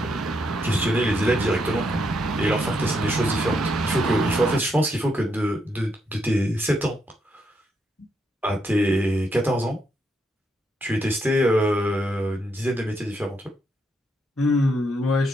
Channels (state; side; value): normal; both; correlation 0.78